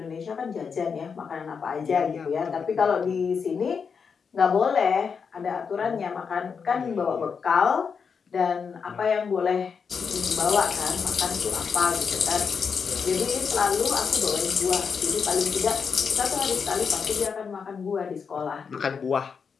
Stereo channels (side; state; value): right; quieter; 6.0 dB